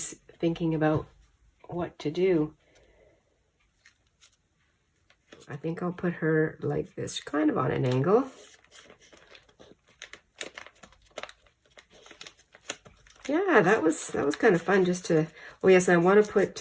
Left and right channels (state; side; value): identical; both; correlation 1.00